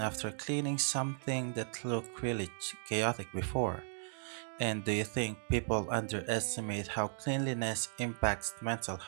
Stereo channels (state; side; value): silent; left; digital silence